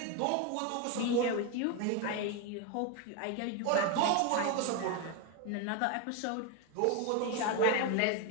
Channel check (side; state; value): both; different; correlation 0.02